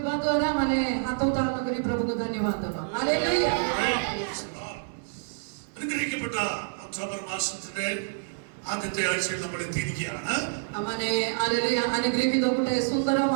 ଦ୍ୱାରା ମାନେ ହାତ ଉତ୍ତାରଣ କରି ପ୍ରଭୁଙ୍କୁ ଧନ୍ୟବାଦ ଦେବା. ହାଲେଲୁୟା. അനുഗ്രഹിക്കപ്പെട്ട ഒക്ടോബർ മാസത്തിന്റെ ആദ്യത്തെ ആഴ്ചയിൽ നമ്മൾ എത്തിയിരിക്കുകയാണ്. ମାନେ ହାଲେଲୁୟା ଅନୁଗ୍ରହିତ ଗୋଟେ ସୁନ୍ଦର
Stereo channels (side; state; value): left; silent; 60 dB below the other